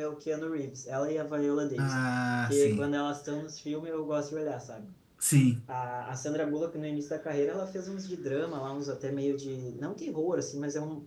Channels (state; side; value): identical; both; correlation 1.00